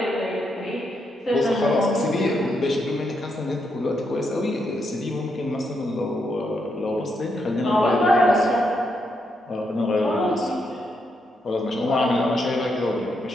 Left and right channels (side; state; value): both; normal; correlation 0.80